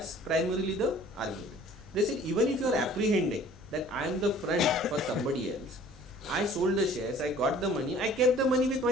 primarily the argument. They said even if you are apprehending that I am the front for somebody else, I sold the shares, I got the money, I kept the money with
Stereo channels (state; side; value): noise; right; rumble, 26 dB below the sound